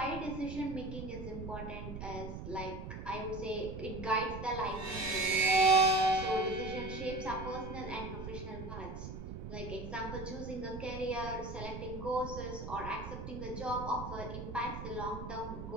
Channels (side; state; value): right; noise; rumble, 8 dB below the sound